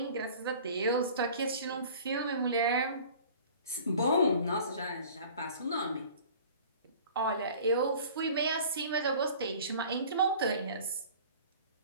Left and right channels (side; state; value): both; inverted; correlation -0.46